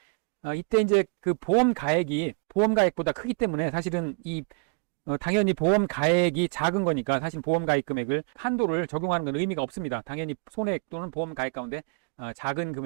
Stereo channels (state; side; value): quieter; left; 37.2 dB